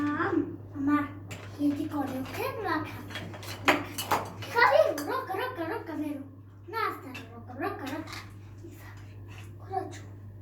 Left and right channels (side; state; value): both; identical; correlation 1.00